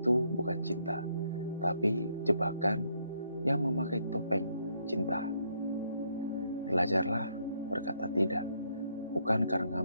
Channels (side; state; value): both; inverted; correlation -0.73